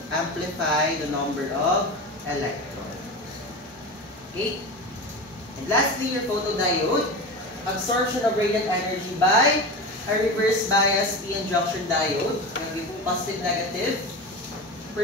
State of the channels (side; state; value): both; normal; correlation 0.26